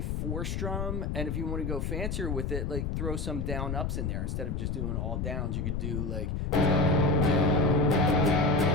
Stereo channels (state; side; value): noise; left; rumble, 2 dB below the sound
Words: 4-strum, and if you want to go fancier with it, like throw some down ups in there instead of just doing all downs. You could do like